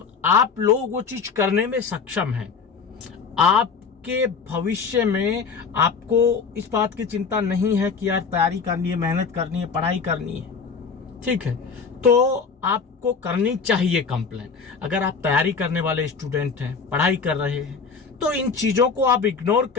आप लोग वो चीज करने में सक्षम हैं, आपके भविष्य में आपको इस बात की चिंता नहीं है कि यार तैयारी करनी है, मेहनत करनी है, पढ़ाई करनी है, ठीक है, तो आपको करनी चाहिए कंप्लेन। अगर आप तैयारी करने वाले स्टूडेंट हैं, पढ़ाई कर रहे हैं, तो इन चीजों को आप इग्नोर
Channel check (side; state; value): right; quieter; 5.4 dB